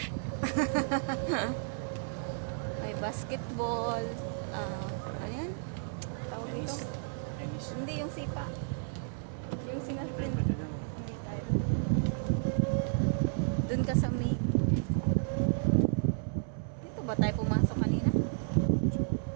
May basketball. Ano yan? Tawag dito? Tennis. Hindi, yung sipa. Yung sinaspin. Pwede daw. Hindi tayo. Doon ka sa main. Dito ba tayo pumasok kanina?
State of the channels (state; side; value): silent; left; 56 dB below the other